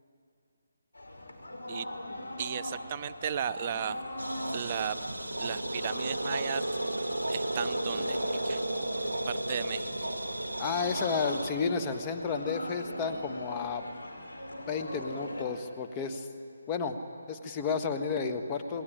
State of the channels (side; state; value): both; inverted; correlation -0.66